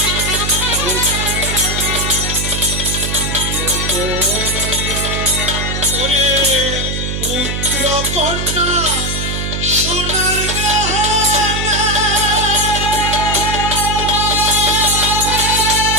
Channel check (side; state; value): right; noise; hum, 3 dB below the sound